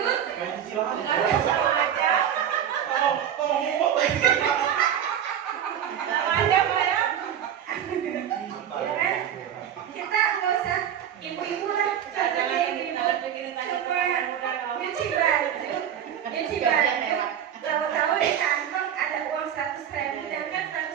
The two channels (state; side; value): quieter; left; 9.6 dB